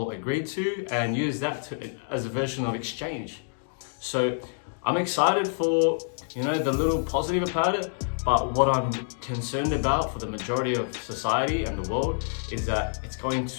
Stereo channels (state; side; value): silent; right; digital silence